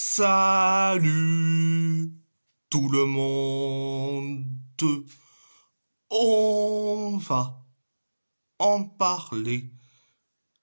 Salut tout le monde. On va en parler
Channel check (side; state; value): both; inverted; correlation -1.00